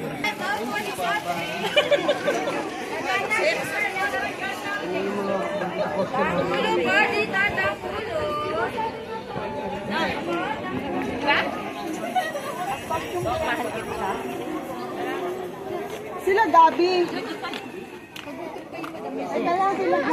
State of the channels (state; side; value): identical; both; correlation 1.00